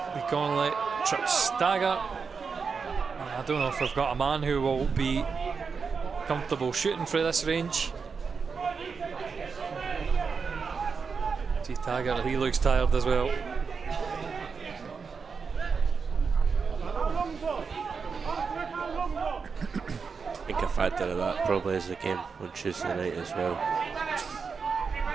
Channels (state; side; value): quieter; left; 5.4 dB